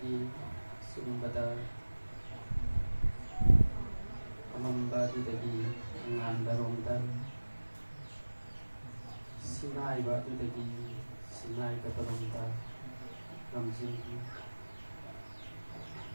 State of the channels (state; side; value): inverted; both; correlation -1.00